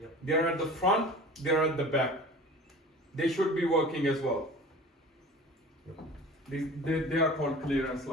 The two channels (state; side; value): normal; both; correlation 0.40